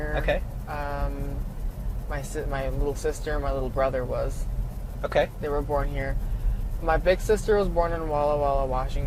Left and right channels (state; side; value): identical; both; correlation 1.00